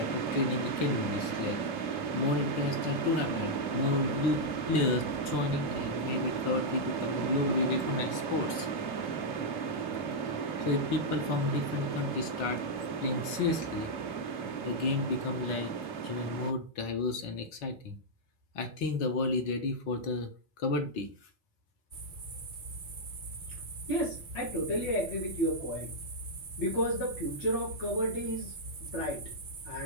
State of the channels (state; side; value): late; right; 4.3 ms